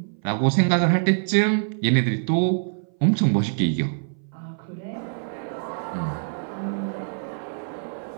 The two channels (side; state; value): left; silent; 59 dB below the other